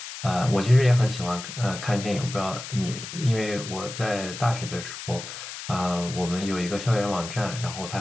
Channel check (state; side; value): noise; left; hiss, 10 dB below the sound